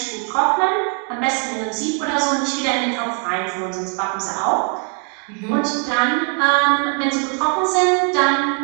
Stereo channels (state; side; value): quieter; left; 39.6 dB